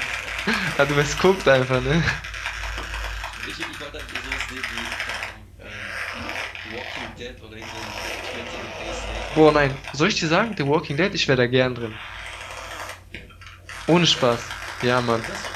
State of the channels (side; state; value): both; identical; correlation 1.00